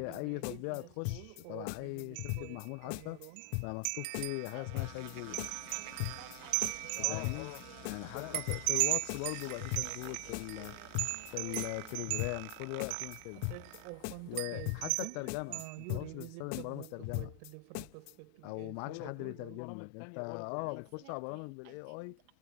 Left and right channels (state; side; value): different; both; correlation 0.00